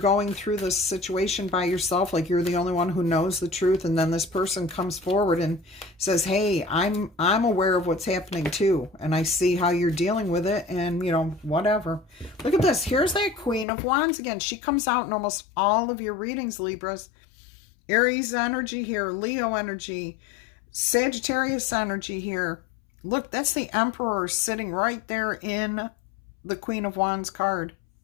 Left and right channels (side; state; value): right; drops out; at 13.7 s